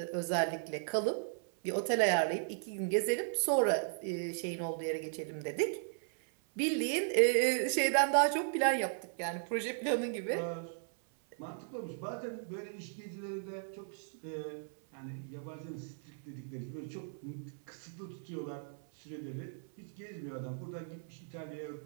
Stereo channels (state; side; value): silent; left; 54 dB below the other